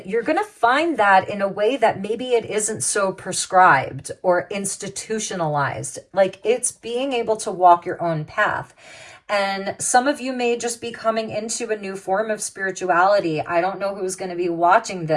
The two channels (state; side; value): identical; both; correlation 1.00